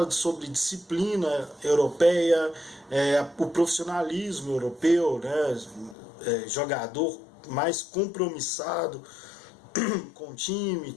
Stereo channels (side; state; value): right; drops out; at 6.0 s